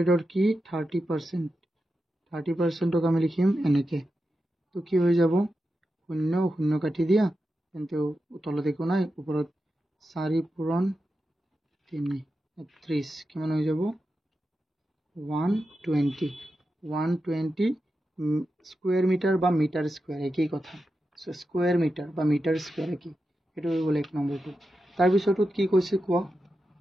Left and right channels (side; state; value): both; normal; correlation 0.90